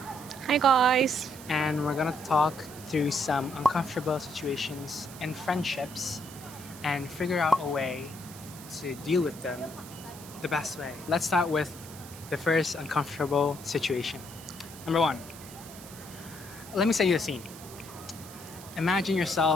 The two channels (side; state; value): right; noise; hiss, 16 dB below the sound